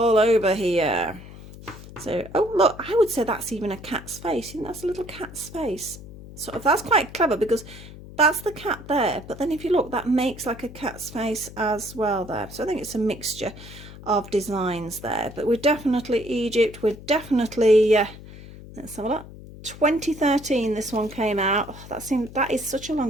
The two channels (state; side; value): noise; left; hum, 16 dB below the sound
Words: over here. So, oh look, I would say that's even a cat's face. You know, that's a little cat's face. Sort of, that's quite clever because that's the cat there. But then if you look, that makes like a cat's face as well there. So I think it's a mixture of designs there. But we're definitely Egypt. We're definitely, let's have a look. 2013 this one came out. Oh, that is such a